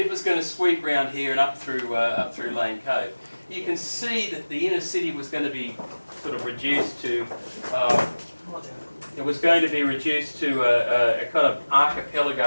it was going to sweep round here and up through Lane Cove. You can see that the inner city was going to be sort of reduced to a kind of archipelago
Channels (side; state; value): both; inverted; correlation -1.00